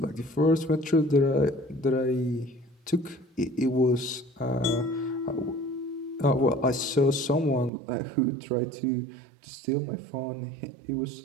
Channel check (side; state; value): left; drops out; at 7.7 s